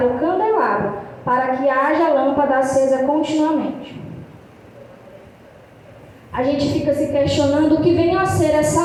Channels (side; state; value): both; identical; correlation 1.00